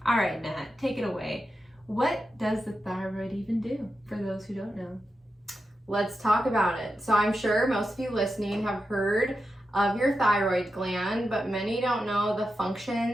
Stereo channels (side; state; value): both; normal; correlation 0.89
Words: All right, Nat, take it away. What does the thyroid even do for those who don't know? Let's talk about it. So I'm sure most of you listening have heard of your thyroid gland, but many don't know the